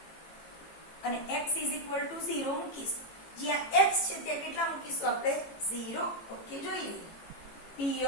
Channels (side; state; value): right; late; 18 ms